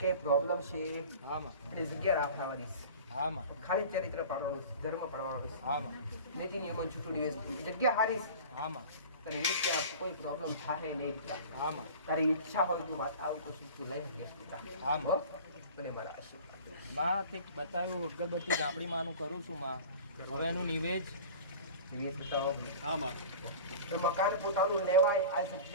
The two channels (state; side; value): inverted; both; correlation -0.39